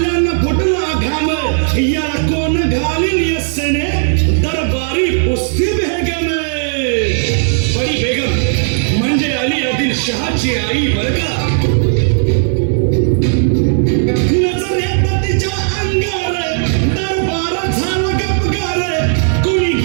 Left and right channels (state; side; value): silent; left; digital silence